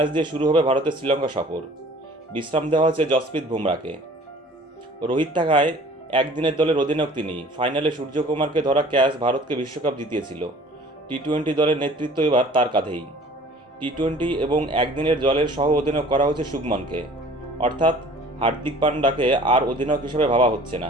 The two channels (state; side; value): normal; both; correlation 0.49